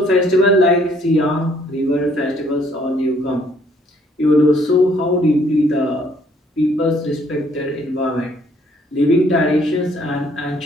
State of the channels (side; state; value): both; normal; correlation 0.64